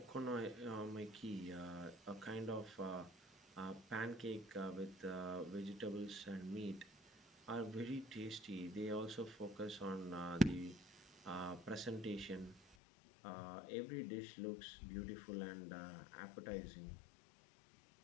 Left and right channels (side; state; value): right; drops out; at 12.8 s